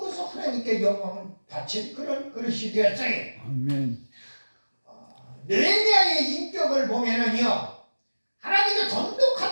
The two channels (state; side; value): inverted; both; correlation -1.00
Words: 하나님께 영광을 바친 그런 그릇이 되었어요. 아멘. 느헤미야의 인격을 보면은요, 하나님의